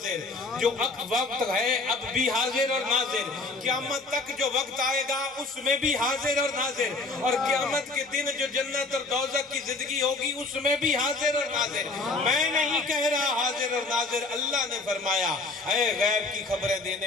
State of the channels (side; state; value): right; quieter; 3.4 dB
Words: جو وقت ہے اب بھی حاضر اور ناظر، قیامت تک جو وقت آئے گا اس میں بھی حاضر اور ناظر، اور قیامت کے دن جو جنت اور دوزخ کی زندگی ہوگی اس میں بھی حاضر اور ناظر۔ میں نہیں کہہ رہا حاضر اور ناظر، اللہ نے فرمایا اے غیب کی خبریں